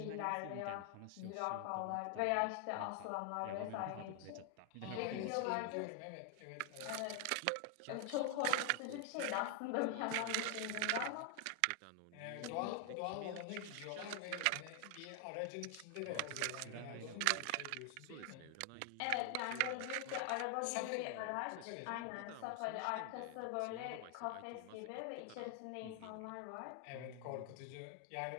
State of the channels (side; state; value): both; different; correlation 0.00